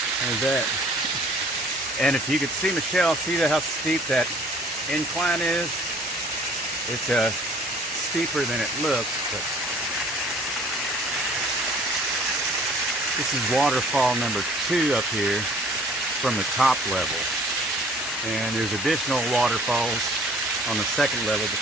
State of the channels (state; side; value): noise; right; hum, 30 dB below the sound